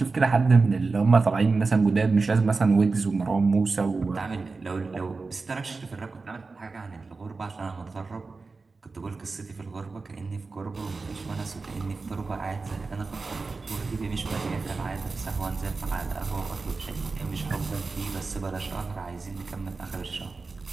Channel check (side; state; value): left; quieter; 4.1 dB